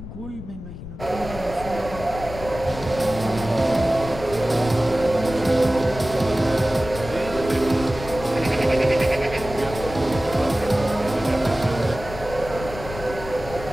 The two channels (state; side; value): noise; left; rumble, 12 dB below the sound